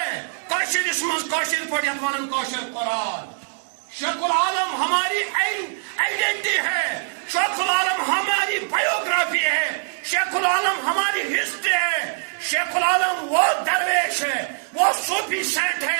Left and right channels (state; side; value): silent; left; digital silence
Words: کاشر اسمز کاشر پڑھیت ونن کاشر قرآن. شیخ العالم ہماری آئیڈینٹی ہے، شیخ العالم ہماری بایوگرافی ہے، شیخ العالم ہماری ہسٹری ہے. شیخ العالم وہ درویش ہے، وہ صوفی سینٹ